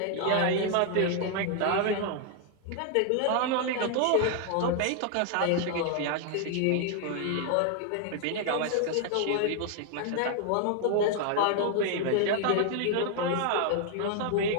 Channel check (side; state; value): both; different; correlation 0.00